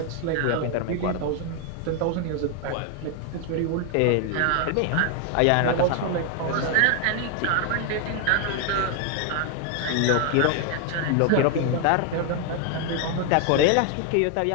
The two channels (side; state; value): both; different; correlation 0.00